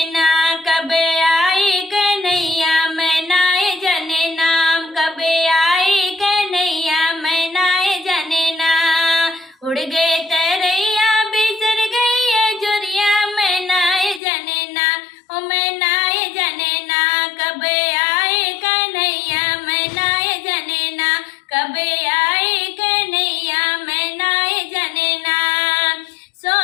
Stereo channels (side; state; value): right; drops out; at 14.2 s